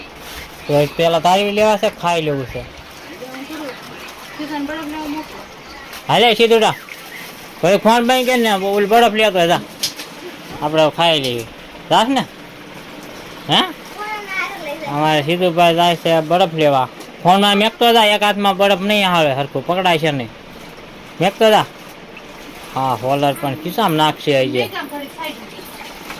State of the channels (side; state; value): both; identical; correlation 1.00